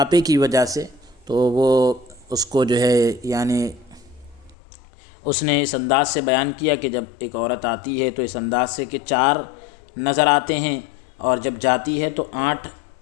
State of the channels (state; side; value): drops out; right; at 4.5 s